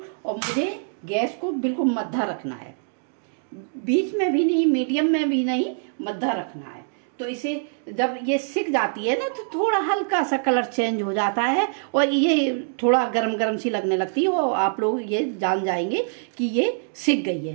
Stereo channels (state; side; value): silent; left; digital silence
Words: और मुझे गैस को बिल्कुल मद्धा रखना है, बीच में भी नहीं, मीडियम में भी नहीं, मद्धा रखना है। तो इसे जब ये सिक जाती है ना तो थोड़ा हल्का सा कलर चेंज हो जाता है और ये थोड़ा गरम गरम सी लगने लगती है, और आप लोग ये जान जाएंगे कि ये सिक गई